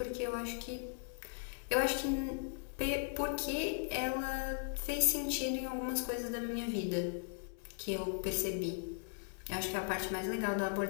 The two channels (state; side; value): silent; right; 52 dB below the other